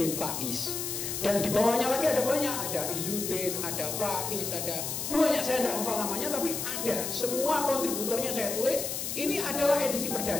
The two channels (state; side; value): noise; left; hiss, 3 dB below the sound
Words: Faiz, dan di bawahnya lagi ada banyak, ada Izuddin, ada Faiz, ada banyak, saya tidak hafal namanya, tapi ada, semua kontributornya saya tulis. Ini adalah edisi